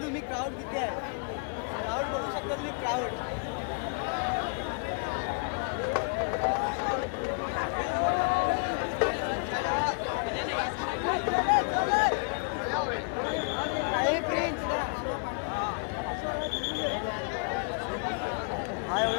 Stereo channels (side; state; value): right; quieter; 38.4 dB